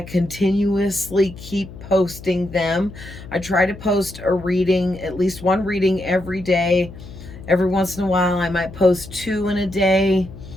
keep posting them. I try to post a reading, at least one reading every day. Every once in a while, I might post two in a day.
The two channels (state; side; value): noise; left; hum, 15 dB below the sound